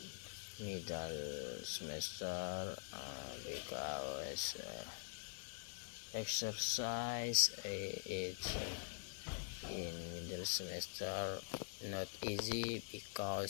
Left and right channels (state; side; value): silent; right; digital silence